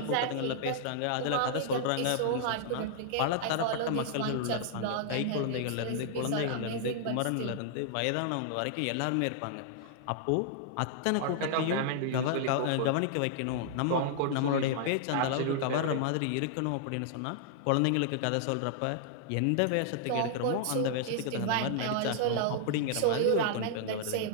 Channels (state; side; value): different; both; correlation -0.01